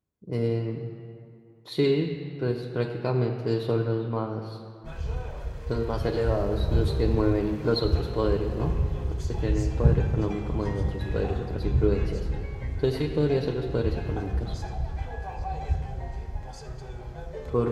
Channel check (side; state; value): both; identical; correlation 1.00